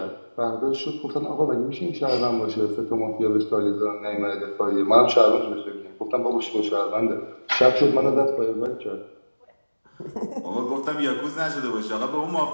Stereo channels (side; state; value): both; inverted; correlation -1.00